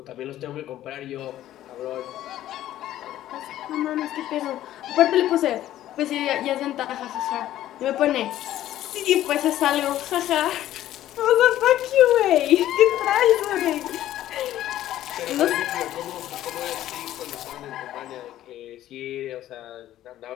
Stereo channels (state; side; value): quieter; right; 13.1 dB